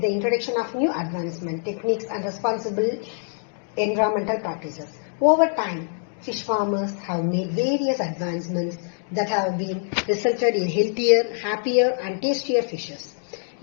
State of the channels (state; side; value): silent; right; 59 dB below the other